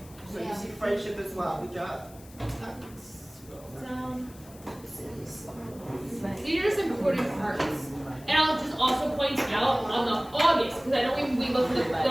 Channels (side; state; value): left; noise; hiss, 22 dB below the sound